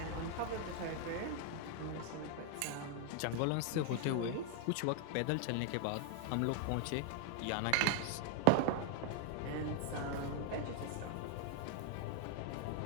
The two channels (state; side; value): different; both; correlation 0.00